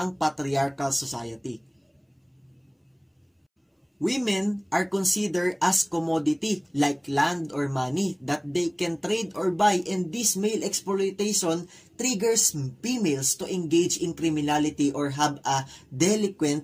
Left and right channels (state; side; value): identical; both; correlation 1.00